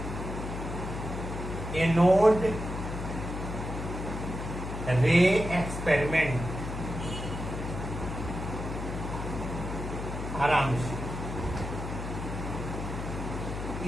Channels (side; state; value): left; noise; hum, 6 dB below the sound